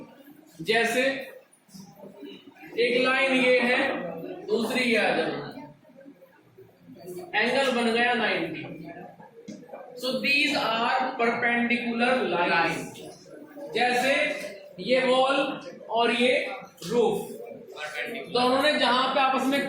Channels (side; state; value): both; identical; correlation 1.00